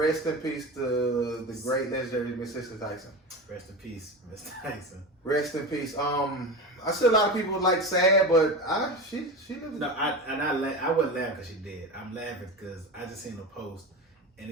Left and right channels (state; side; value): normal; both; correlation 0.26